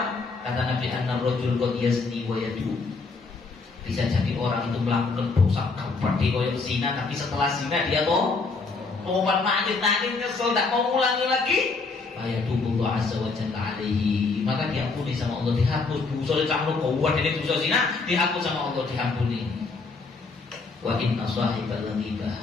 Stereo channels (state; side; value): quieter; right; 4.1 dB